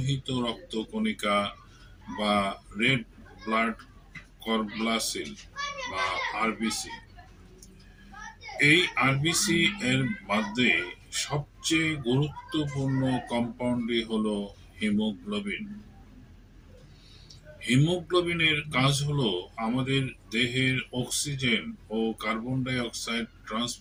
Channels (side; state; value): both; identical; correlation 1.00